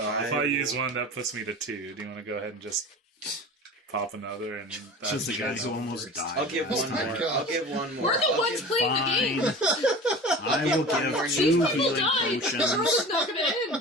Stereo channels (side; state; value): both; normal; correlation 0.36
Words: if I use one, that puts me to 2. Do you want to go ahead and just pop another? And Just the guys who almost died. I'll give Oh one my more. God. I'll give one more. We're the I'll ones give- playing the game. I will One more give These 2 people healing died. The world potions. is not going to